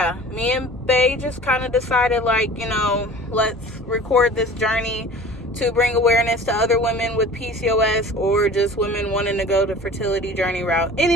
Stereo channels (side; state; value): both; normal; correlation 0.43